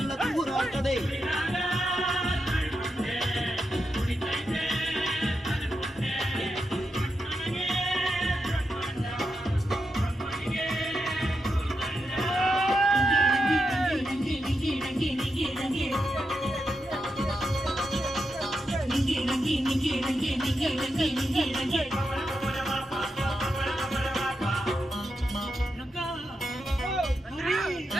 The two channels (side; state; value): both; normal; correlation 0.86